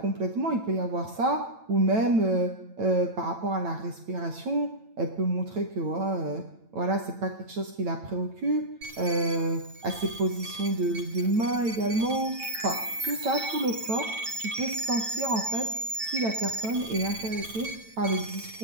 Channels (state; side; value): late; left; 9.0 ms